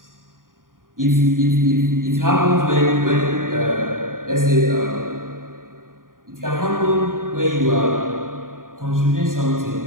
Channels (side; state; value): left; late; 0.90 ms